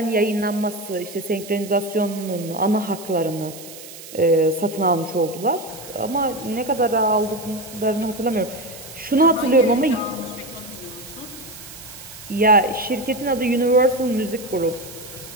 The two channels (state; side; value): noise; right; hiss, 15 dB below the sound